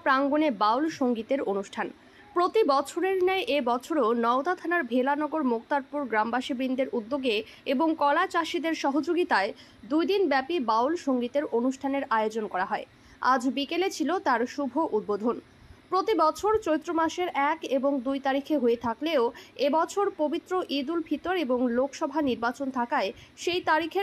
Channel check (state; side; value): identical; both; correlation 1.00